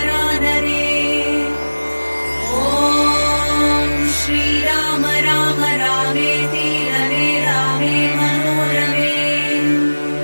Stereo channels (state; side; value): inverted; both; correlation -1.00